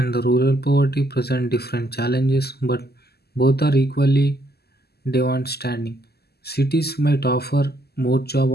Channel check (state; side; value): late; right; 0.46 ms